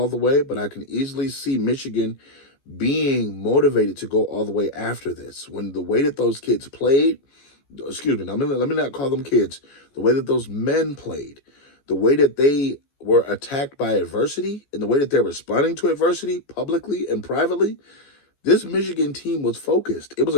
the way, but I can easily see Michigan being motivated to go all the way after this. When the way that those kids played, excuse me, let me not call them kids, the way that those men played, the way that they were attacked by adversity, and the way that they're responding to adversity publicly and privately, this Michigan team was focused. It was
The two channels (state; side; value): late; right; 14 ms